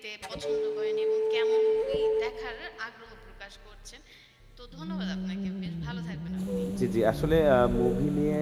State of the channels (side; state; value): both; identical; correlation 1.00